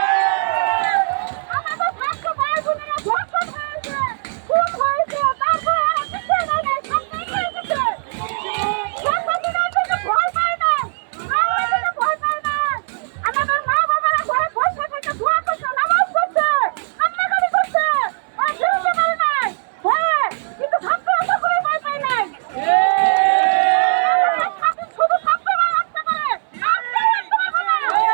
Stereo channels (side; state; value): left; silent; 65 dB below the other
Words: আমাদের ছাত্র ভাই বোনেরা ধর্ষণ হয়েছে, খুন হয়েছে, তারপরে ওরা পিছিয়ে নেয় নাই, সামনে এগিয়ে এসেছে। স্বাধীনতার জন্য ভয় পায় না, আমাদের ভয় পায় না। আমাদের মা বাবারা ঘরে বসে থেকে দোয়া করছে, নামাজ পড়ছে, কান্নাকাটি করছে, ওরা ফিরতে পারে নাই ভয়ে, কিন্তু ছাত্ররা সকলেই ভয় পায় নাই। শুধু ছাত্ররাই আসতে পারে, আর কেউ আসতে পারবে না।